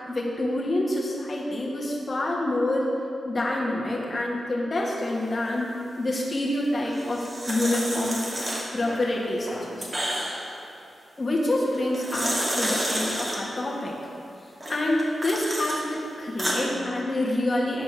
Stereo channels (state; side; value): normal; both; correlation 0.91